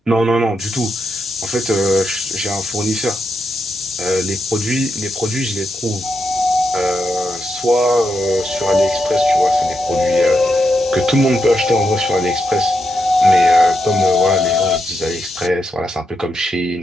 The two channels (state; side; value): normal; both; correlation 0.84